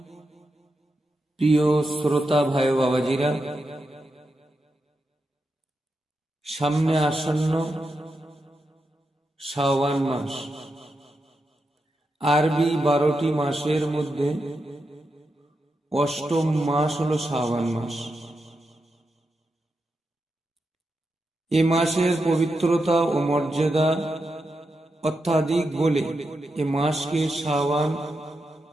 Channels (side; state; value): both; normal; correlation 0.87